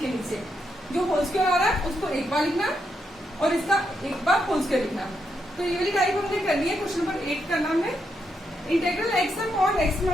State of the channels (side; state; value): both; normal; correlation 0.81